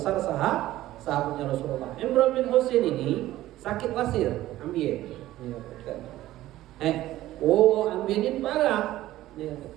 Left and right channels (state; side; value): quieter; left; 15.1 dB